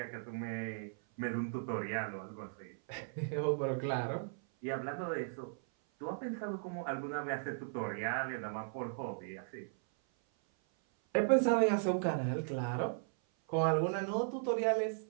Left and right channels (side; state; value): left; silent; 53 dB below the other